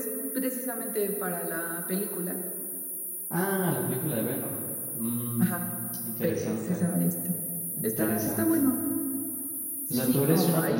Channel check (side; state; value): both; identical; correlation 1.00